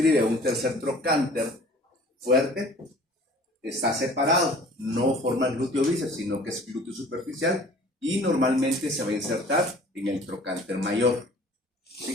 un tercer trocánter fuerte, está separado, no forma el glúteo bíceps, sino que es glúteo superficial y normalmente se va a insertar en el trocánter mayor.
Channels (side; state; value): both; normal; correlation 0.49